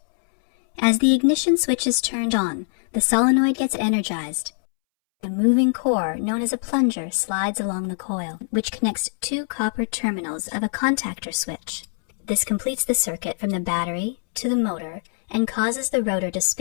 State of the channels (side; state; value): right; silent; 63 dB below the other